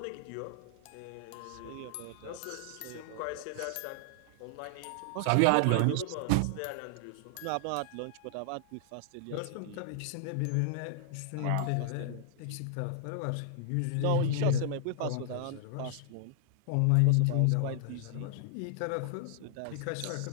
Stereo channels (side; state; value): both; different; correlation -0.01